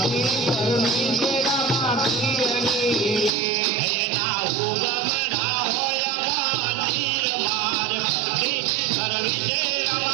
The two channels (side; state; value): left; drops out; at 3.3 s